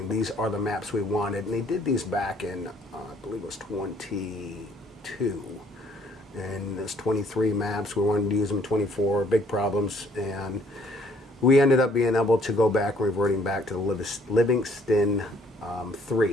these are the maps we wanted. And they did these back in, I believe it was 22. And there's 23 maps. We wanted to use them 24, big problems. And we ended up being able to go back, reverting back to the Livingston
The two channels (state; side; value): normal; both; correlation 0.62